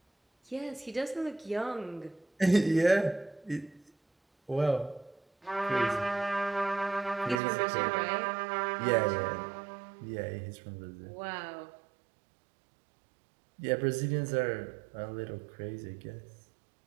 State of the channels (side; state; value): left; drops out; at 7.4 s